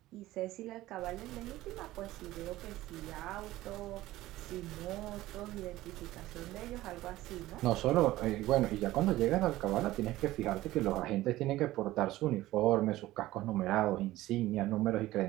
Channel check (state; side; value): quieter; left; 16.5 dB